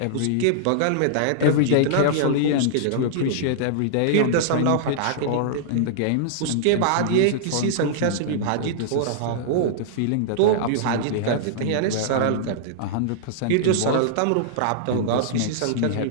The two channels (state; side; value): different; both; correlation -0.01